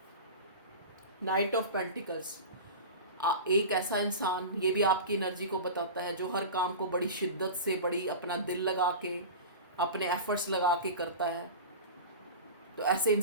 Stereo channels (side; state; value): both; inverted; correlation -0.30